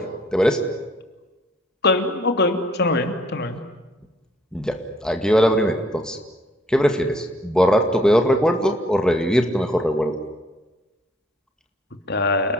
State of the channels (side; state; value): both; normal; correlation 0.63